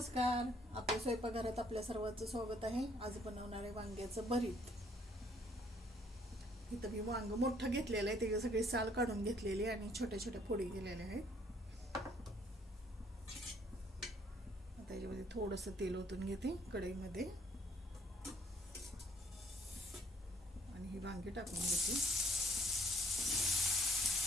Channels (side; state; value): both; normal; correlation 0.64